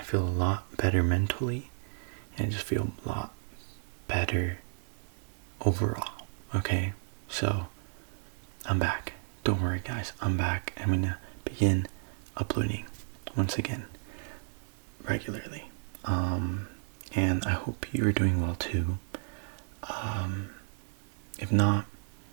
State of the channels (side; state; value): left; silent; digital silence